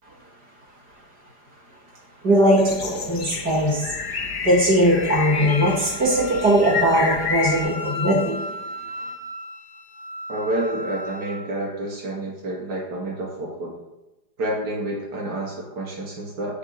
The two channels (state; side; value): late; left; 4.9 ms